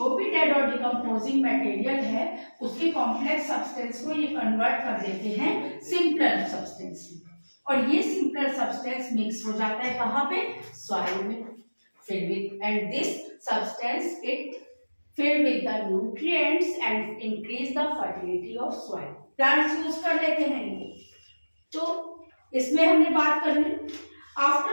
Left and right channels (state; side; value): inverted; both; correlation -1.00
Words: भी डेड और डिकम्पोजिंग मटेरियल है उसके कॉम्प्लेक्स सब्सटेंस को ये कन्वर्ट कर देते हैं सिंपलर सब्सटेंस में, और ये सिंपलर सब्सटेंस मिक्स हो जाता है कहाँ पे, सॉइल में, filled with, and this substance it filled with the nutrients and increase the fertility of soil. Plants use कर लेते हैं इनको, तो इसमें हमने बात कर ली।